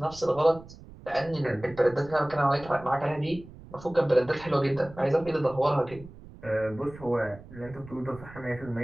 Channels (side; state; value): right; noise; rumble, 18 dB below the sound